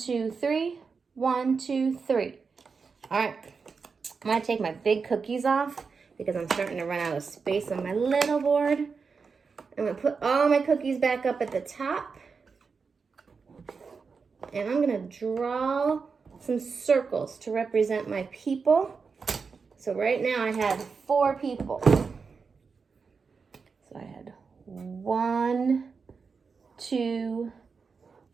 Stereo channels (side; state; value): left; quieter; 5.2 dB